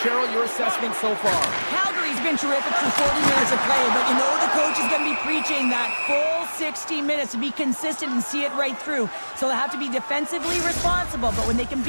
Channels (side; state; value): both; inverted; correlation -1.00